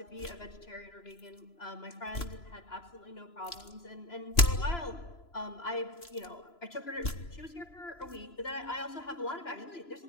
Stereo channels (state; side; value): late; right; 3.0 ms